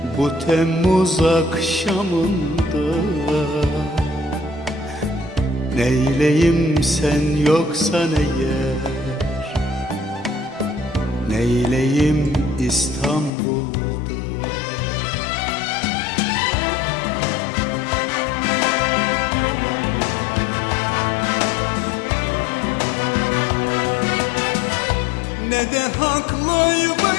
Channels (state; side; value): drops out; right; at 13.3 s